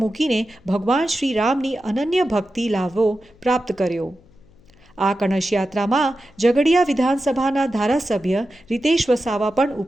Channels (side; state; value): left; noise; hum, 29 dB below the sound